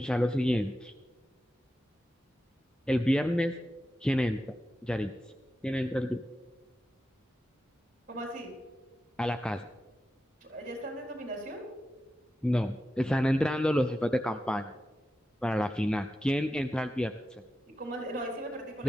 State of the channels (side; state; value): both; normal; correlation 0.90